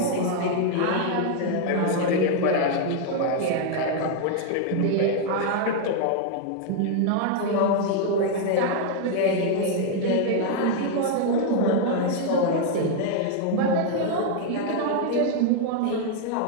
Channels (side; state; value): both; different; correlation 0.00